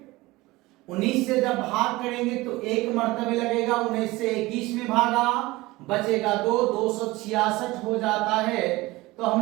19 से जब भाग करेंगे तो एक मर्तबे लगेगा, 19 से 21 में भागा, बचेगा 266 हो जाता है। तो हम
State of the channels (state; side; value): quieter; left; 20.3 dB